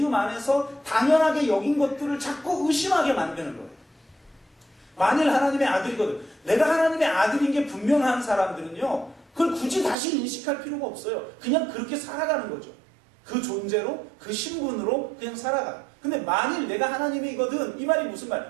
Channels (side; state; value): left; drops out; at 10.0 s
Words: 안에서 당연하게 여긴 것들을 자꾸 의심하게 만드는 거예요. 만일 하나님의 아들이거든. 내가 하나님의 아들인 게 분명한 사람들은요, 그걸 굳이 다시 인식할 필요가 없어요. 그냥 그렇게 살아가는 거죠. 그 존재로, 그 신분으로 그냥 살아가. 근데 만일 내가 하나님이거든, 이 말이 무슨